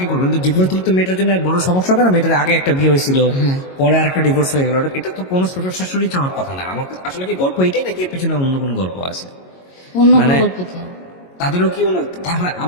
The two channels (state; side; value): late; right; 22 ms